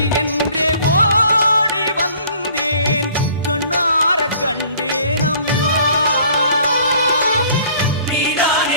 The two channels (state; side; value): inverted; both; correlation -0.54